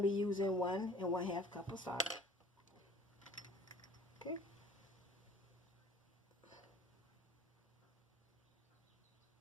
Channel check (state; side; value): normal; both; correlation 0.50